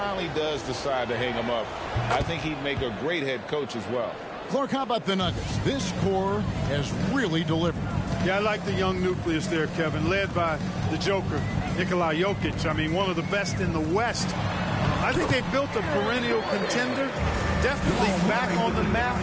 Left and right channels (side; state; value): both; identical; correlation 1.00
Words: does decide to hang him up, I think he'd make a great head coach as well. Clark, how about the Nuggets? This core has really delivered. Yeah, I like the young nucleus there, Kevin, led by the Joker, Nikola Jokic. I mean, one of the best in the West. I think they built a perennial contender, definitely back on the map